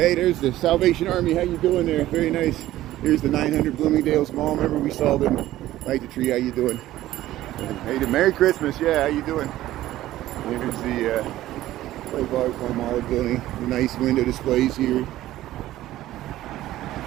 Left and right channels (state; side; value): quieter; left; 14.8 dB